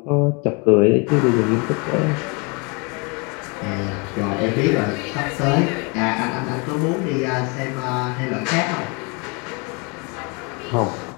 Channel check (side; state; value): right; quieter; 31.6 dB